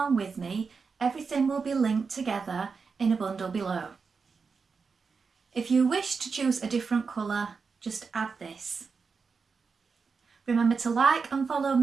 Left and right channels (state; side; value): quieter; left; 5.1 dB